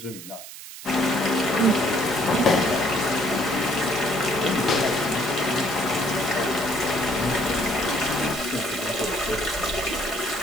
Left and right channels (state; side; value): noise; right; hiss, 13 dB below the sound